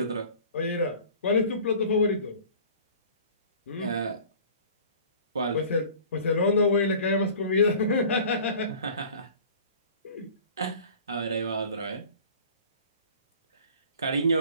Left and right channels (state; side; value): inverted; both; correlation -0.46